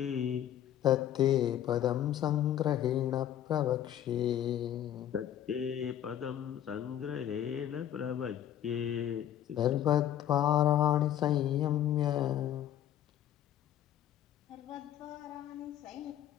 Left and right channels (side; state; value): right; quieter; 11.0 dB